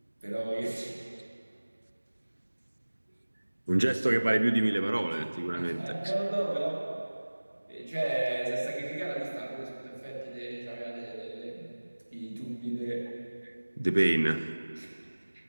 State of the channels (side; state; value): both; inverted; correlation -1.00